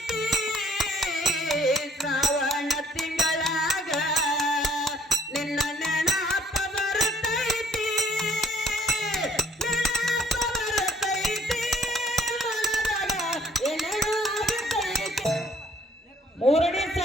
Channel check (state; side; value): normal; both; correlation 0.60